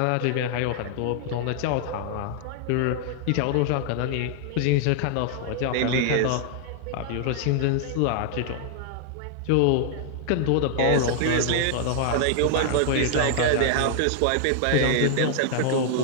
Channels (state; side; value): different; both; correlation -0.01